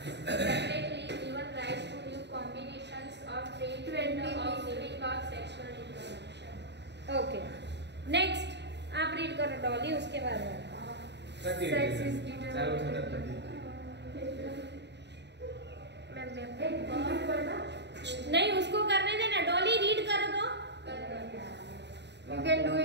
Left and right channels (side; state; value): left; late; 0.50 ms